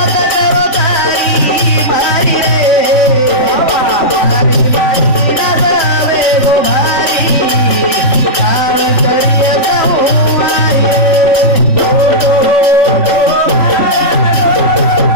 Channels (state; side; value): late; right; 3.5 ms